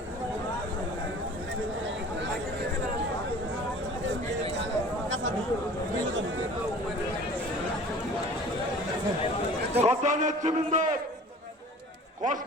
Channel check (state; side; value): normal; both; correlation 0.45